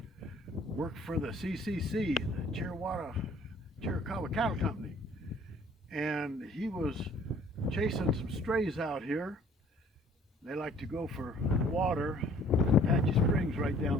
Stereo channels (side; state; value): both; normal; correlation 0.56